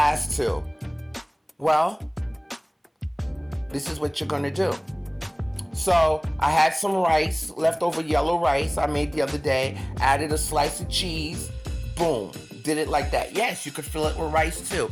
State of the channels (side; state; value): both; identical; correlation 1.00